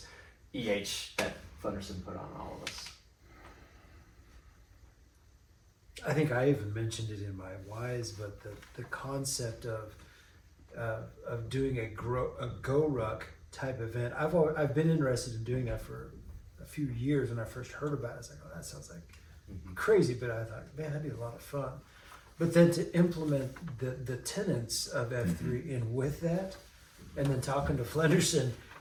EH that Flenderson put on all of us. I think I even mentioned it in my whys, but the concept of doing a GROWRUCK type event, I've been interested in doing that for a few years. When I first heard about it, I was like, oh, that sounds like crazy, but I thought, man, that'd be a lot of fun. But then to implement the tenets of F3 in with that, and then talking to Flenderson,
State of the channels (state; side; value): identical; both; correlation 1.00